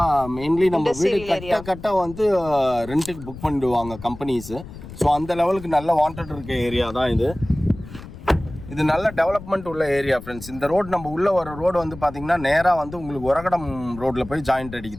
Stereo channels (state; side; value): noise; left; rumble, 14 dB below the sound